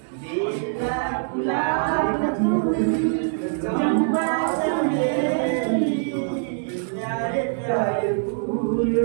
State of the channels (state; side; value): silent; left; digital silence